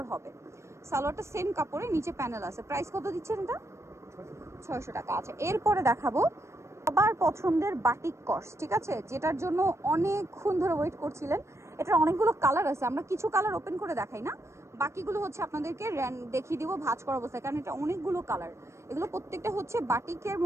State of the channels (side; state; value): left; late; 0.13 ms